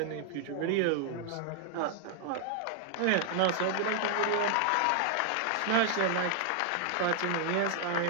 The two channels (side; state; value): both; different; correlation 0.00